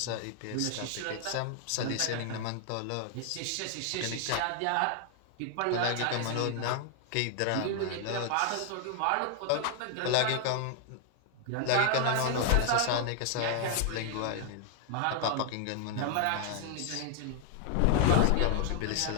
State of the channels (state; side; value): different; both; correlation 0.00